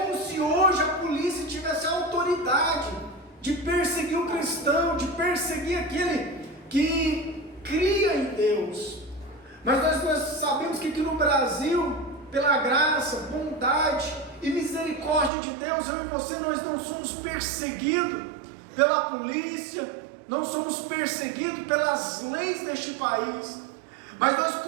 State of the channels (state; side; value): drops out; left; at 15.3 s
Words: se hoje a polícia tivesse autorizado de perseguir o cristão, de perseguir aquele que cria em Deus. Mas nós sabemos que aqui no Brasil, pela graça, bondade e misericórdia de Deus, eu e você, nós não somos perseguidos pela polícia, não somos perseguidos pelas leis deste país, mas nós